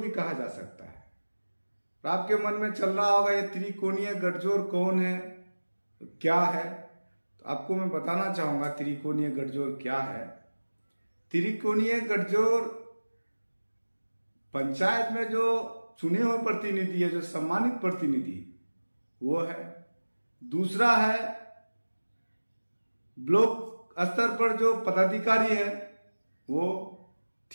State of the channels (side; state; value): both; inverted; correlation -1.00